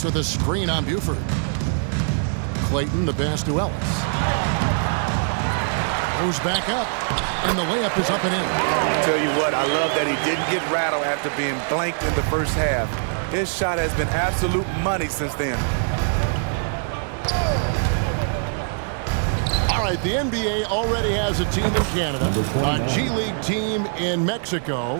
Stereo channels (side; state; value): left; silent; digital silence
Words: with a screen on Buford. Clayton, the pass to Ellis. Goes back up, and the layup is up and in. Tell you what, I love that he didn't get rattled after being blanked in the first half. His shot has been absolute money since then. All right, the NBA already has a team in Canada, a G League team in